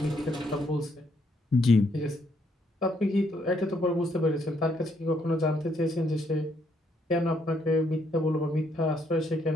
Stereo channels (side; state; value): both; normal; correlation 0.72